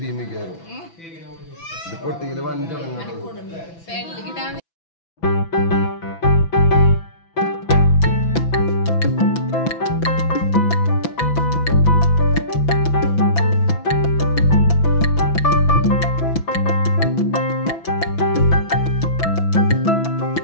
ഭീമിക്കാറോ പൊട്ടിയില് വഞ്ചടങ്ങ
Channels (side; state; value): right; late; 6.0 ms